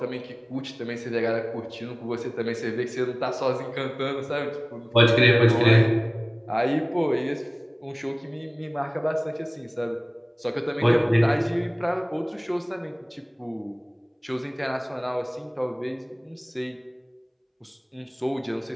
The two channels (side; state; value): both; identical; correlation 1.00